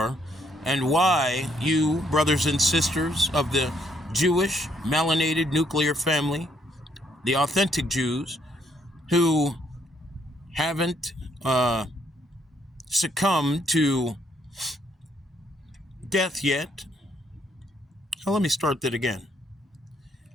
and why you, brothers and sisters of the Jewish melanated nuclear family, the authentic Jews, who haven't succumbed to death yet. Well, let me start that again.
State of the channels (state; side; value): normal; both; correlation 0.70